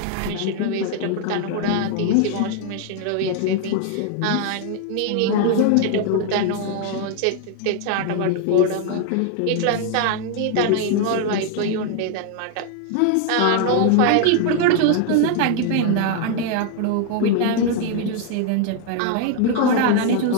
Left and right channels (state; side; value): different; both; correlation 0.00